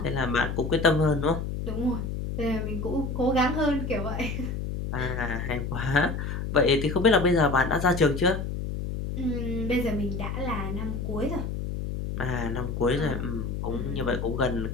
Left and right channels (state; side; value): noise; left; hum, 4 dB below the sound